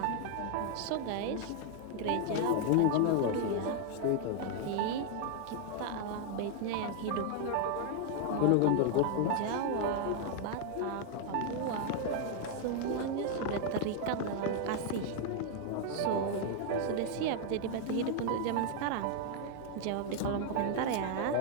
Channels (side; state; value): both; different; correlation 0.00